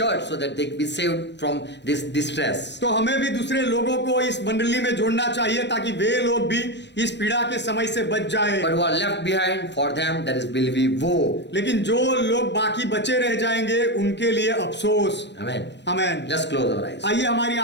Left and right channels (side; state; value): right; late; 0.51 ms